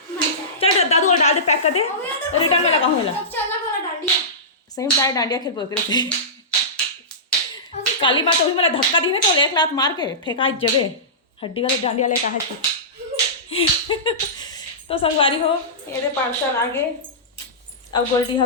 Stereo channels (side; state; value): both; normal; correlation -0.19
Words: चल दादू और डाल दे पैक कर दे रिटर्न में लगा हूँ चलना बोला डांडिया सही में डांडिया खेल बोल थे काली माँ तो भी मेरा धक्का दी है तो एक लात मार के फेंका जगह हड्डी वाले डांडिया ले कहा है। तो संगवारी हो ये दे पार्सल आगे अब गोल्डी